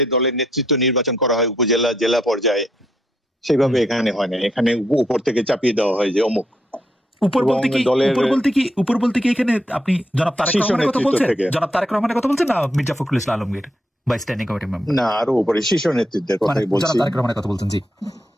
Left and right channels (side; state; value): both; normal; correlation 0.77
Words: দলের নেতৃত্ব নির্বাচন করা হয় উপজেলা জেলা পর্যায়ে, সেইভাবে এখানে হয় না। এখানে উপর থেকে চাপিয়ে দেওয়া হয় যে অমুক। উপর বলতে কি এখানে আপনি জনাব তারেক রহমানের কথা বলছেন? জনাব তারেক রহমানের কথা বলছেন না মির্জা ফখরুল ইসলাম আলমগীর বা স্ট্যান্ডিং কমিটি মেম্বার? না, আরো উপরে শীর্ষ নেতৃত্বের কথাই বলছি। জনাব তারেক রহমানের কথা বলছেন, জি।